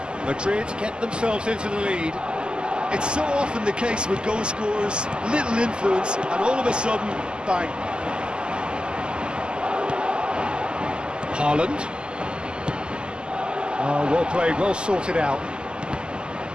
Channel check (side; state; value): left; late; 0.048 ms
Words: Madrid get themselves into the lead. It's so often the case with goal scorers, little influence, and all of a sudden, bang. Haaland. Oh, well played, well sorted out.